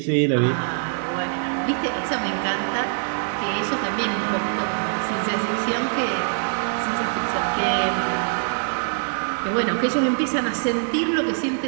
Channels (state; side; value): silent; left; 63 dB below the other